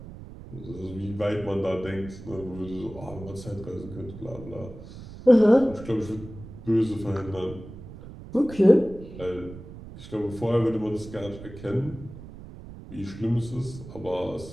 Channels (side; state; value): right; noise; rumble, 14 dB below the sound